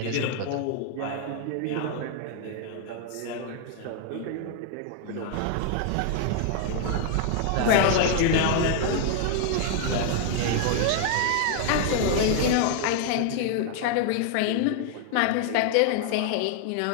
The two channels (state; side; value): different; both; correlation 0.00